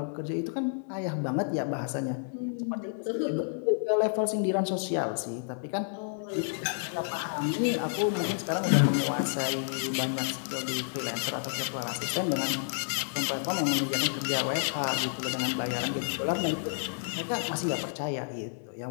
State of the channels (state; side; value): silent; right; digital silence